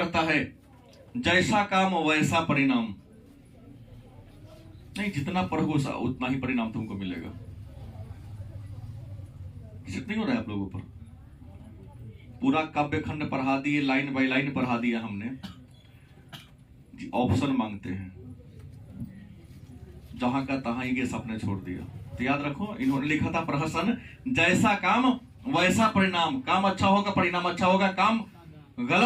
है, जैसा काम वैसा परिणाम। नहीं, जितना पढ़ोगे उतना ही परिणाम तुमको मिलेगा। सेट नहीं हो रहा है आप लोगों पर। पूरा काव्य खंड पढ़ा दिए, लाइन बाय लाइन पढ़ा दिया हमने जी। ऑप्शन मांगते हैं, जहां का तहां ही गेस आपने छोड़ दिया। तो याद रखो, इन्होंने लिखा था प्रहसन, जैसा काम वैसा परिणाम। काम अच्छा होगा परिणाम अच्छा होगा, काम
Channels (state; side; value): identical; both; correlation 1.00